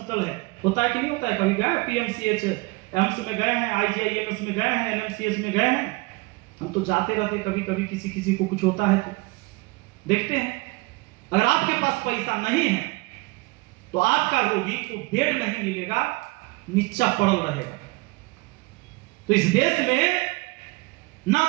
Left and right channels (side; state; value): left; quieter; 25.6 dB